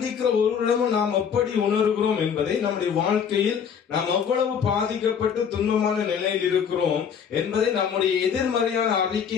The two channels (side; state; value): right; quieter; 7.4 dB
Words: ஒருவரிடமும் நாம் எப்படி உணர்கிறோம் என்பதை, நம்முடைய வாழ்க்கையில் நாம் எவ்வளவு பாதிக்கப்பட்டு துன்பமான நிலையில் இருக்கிறோம் என்பதை நம்முடைய எதிர்மறையான